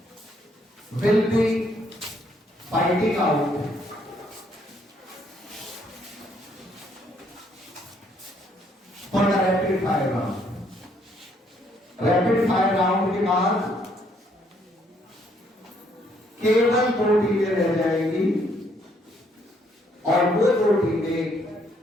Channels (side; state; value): both; normal; correlation 0.69